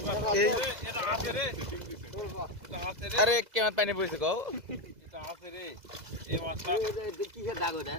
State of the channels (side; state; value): left; late; 2.0 ms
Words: এই এটা আছে রে এটা আছে রে আরে কেমন পানি পড়েছে কও এটা আছে রে এই মাছটা কিসের দাগ ওটা